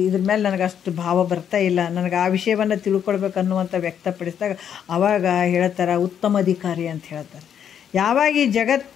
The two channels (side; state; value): right; quieter; 8.7 dB